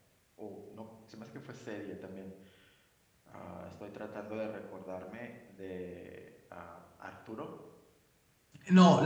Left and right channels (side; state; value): both; identical; correlation 1.00